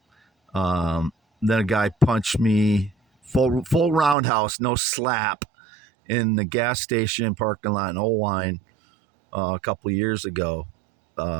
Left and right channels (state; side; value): drops out; left; at 4.2 s